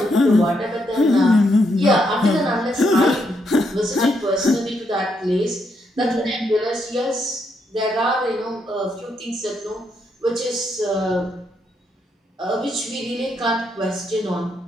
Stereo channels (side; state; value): both; normal; correlation 0.78